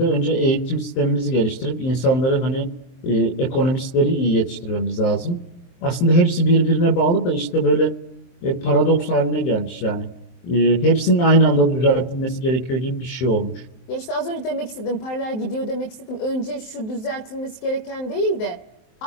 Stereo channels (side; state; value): right; late; 23 ms